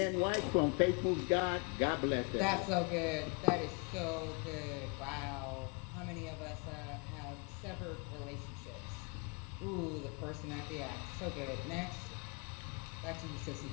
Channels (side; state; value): right; quieter; 33.1 dB